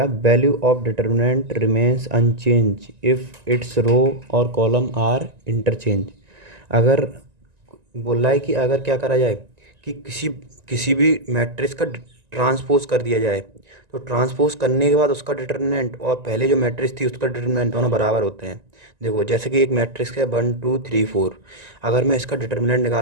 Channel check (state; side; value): late; left; 1.9 ms